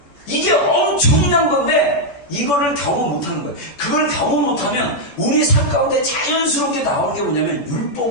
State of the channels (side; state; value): right; late; 14 ms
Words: 이게 엄청난 건데 이거를 경험 못하는 거예요. 그걸 경험 못하면 우리 삶 가운데 자연스럽게 나오는 게 뭐냐면